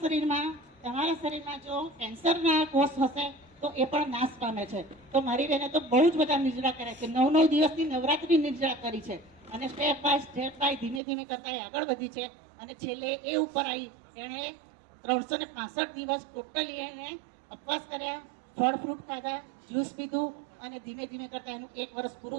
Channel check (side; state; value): left; drops out; at 11.0 s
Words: શરીરમાં જો કેન્સરના કોષ હશે તો એ પણ નાશ પામે છે. તો મારી બહેને તો બહુ જ બધા નિર્જળા કર્યા છે, 9 દિવસની નવરાત્રી નિર્જળા કરી છે અને સ્ટેપ બાય ધીમે ધીમે કરતા એ આગળ વધી છે. અને છેલ્લે એ ઉપર આવી એણે 365 દિવસ ટોટલી એને ઉપવાસ કર્યા, ફળ ફ્રૂટ ખાધા, જ્યુસ પીધું અને ધીમે ધીમે કરતા એનું 1 વર્ષ